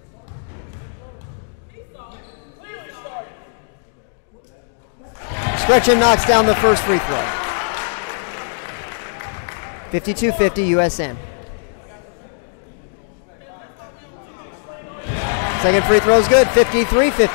Scretchen knocks down the first free throw. 52-50 USN. Second free throw is good.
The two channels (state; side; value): silent; right; digital silence